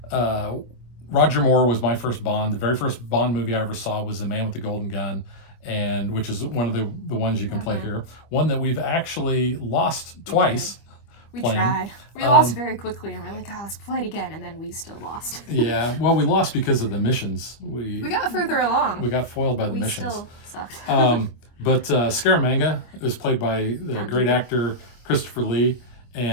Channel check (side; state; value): right; late; 25 ms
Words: Roger Moore was my first Bond. The very first Bond movie I ever saw was The Man with the Golden Gun, and which is one of the ones you can play here. One that we've actually lost twice. We tried. We lost very quickly, and we're like, let's play it again, and then we still lost. Yeah, well, we lost because of the missions. We got further along. We got foiled by the missions. We still sucked. But Scaramanga was played by the great actor Christopher Lee,